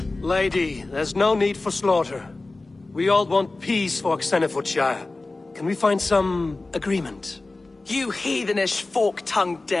Lady, there's no need for slaughter. We all want peace for Xenofordshire. Can we find some agreement? You heathenish fork-tongued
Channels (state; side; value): quieter; right; 3.2 dB